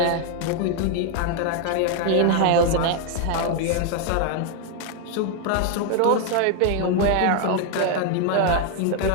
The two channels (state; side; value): different; both; correlation 0.01